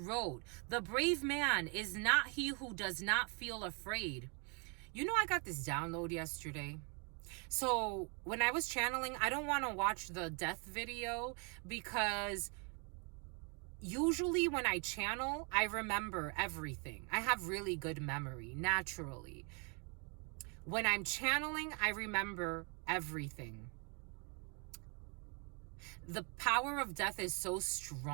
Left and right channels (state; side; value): quieter; left; 35.2 dB